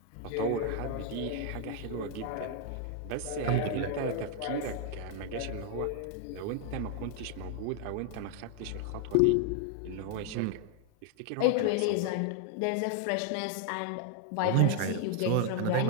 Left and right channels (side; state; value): both; different; correlation 0.00